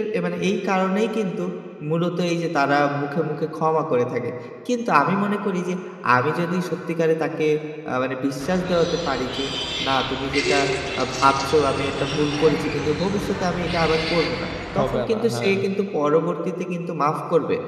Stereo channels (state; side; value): identical; both; correlation 1.00